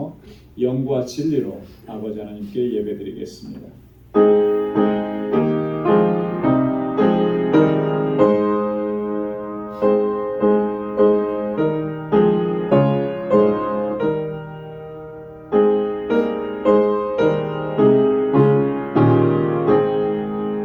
영과 진리로 아버지 하나님께 예배드리겠습니다.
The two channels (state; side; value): identical; both; correlation 1.00